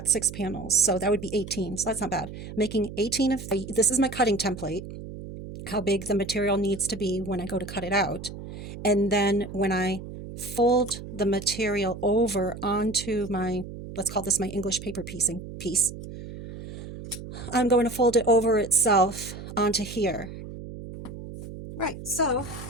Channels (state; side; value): noise; right; hum, 11 dB below the sound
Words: 6 panels, so that would be 18. So that's not bad. Making 18 of this is my cutting template, how big the material needs to be when I go to cut it out. And then when I fold the material over onto my, let's call this my English paper piecing piece, I'm going to fold it over itself onto here. Right, so